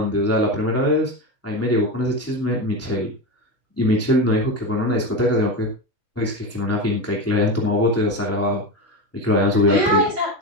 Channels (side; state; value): both; normal; correlation 0.19